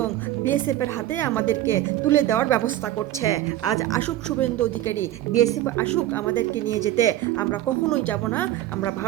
বিএসএফের হাতে আমাদেরকে তুলে দেওয়ার ব্যবস্থা করছে। আজ আসুক শুভেন্দু অধিকারী, বিএসএফ আসুক আমাদেরকে নিয়ে যেতে, আমরা কখনোই যাব না। আমরা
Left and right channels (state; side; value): quieter; left; 13.9 dB